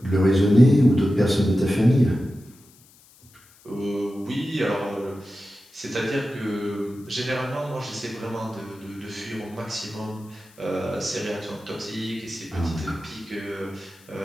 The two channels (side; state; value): left; noise; hiss, 27 dB below the sound